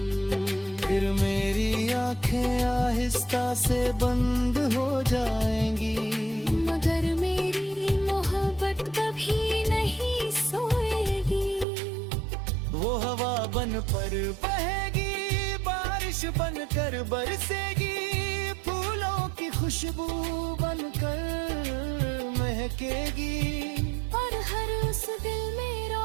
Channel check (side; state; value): left; drops out; at 11.7 s